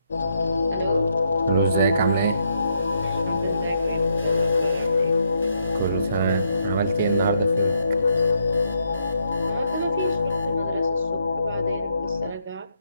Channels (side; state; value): both; inverted; correlation -0.76